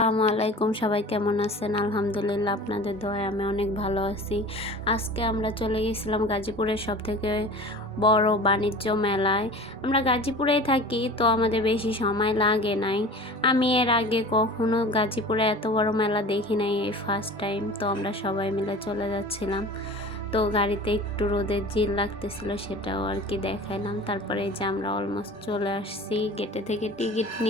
আলাইকুম, সবাই কেমন আছেন? আলহামদুলিল্লাহ, আপনাদের দোয়ায় আমি অনেক ভালো আছি। আজকে আমরা চলে গেছিলাম গাজীপুরের সবথেকে বড় বাণিজ্য মেলায়। আমরা গাজীপুরেই থাকি, তো আমাদের বেশি সময় লাগে নাই। আমি এর আগে কখনো গাজীপুরে এত বড় মেলা দেখি নাই, এই ফার্স্ট টাইম। তো আমরা সবাই মিলে চলে যাচ্ছিলাম। তো গাড়িতে একটু রোদের জিল লাগতেছিল, সেটাও আর কি দেখাইলাম। তারপরে এই যে আমরা অলমোস্ট চলে আসছি গেটে থেকে টিকিট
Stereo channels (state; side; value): normal; both; correlation 0.39